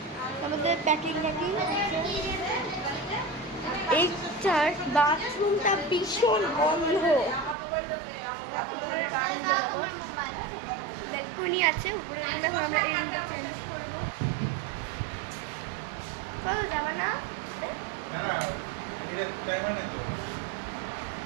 আমাদের প্যাকিং এইটার বাথরুমটা ভীষণ বন্ধ। ব্যালকনি আছে উপরে। এখন আমরা এই রুমটা চেঞ্জ করবো। চলো যাবা না?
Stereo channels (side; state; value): left; drops out; at 7.6 s